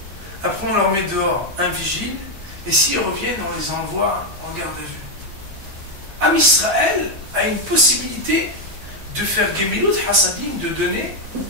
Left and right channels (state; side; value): late; left; 7.3 ms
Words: Après, on leur met dehors un vigile. Et s'ils reviennent, on les envoie en garde à vue. Am Israël a une possibilité de faire Gemilut Hasadim, de donner